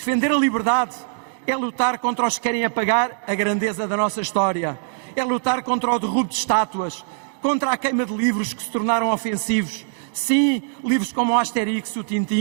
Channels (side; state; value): left; silent; digital silence